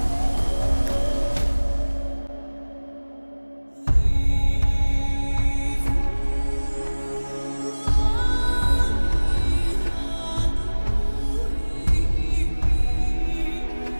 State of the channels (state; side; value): inverted; both; correlation -1.00